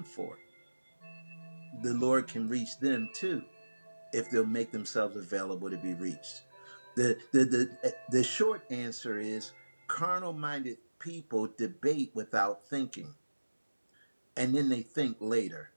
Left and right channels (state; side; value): inverted; both; correlation -1.00